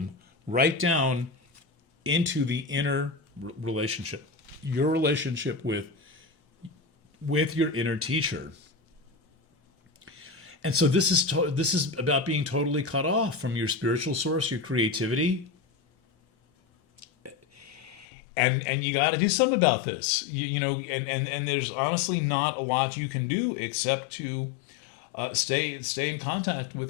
right down into the inner relationship, your relationship with your inner teacher. And so this is about being totally cut off from your spiritual source, your creativity. And you got to do something about this, and there's honestly not a lot you can do except to stay in contact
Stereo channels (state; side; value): drops out; right; at 18.1 s